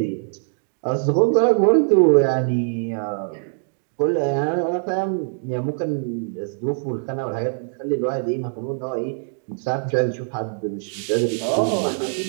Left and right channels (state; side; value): silent; left; digital silence